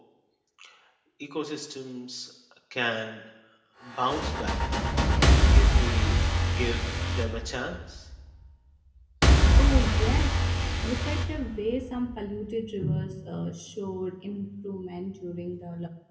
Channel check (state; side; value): identical; both; correlation 1.00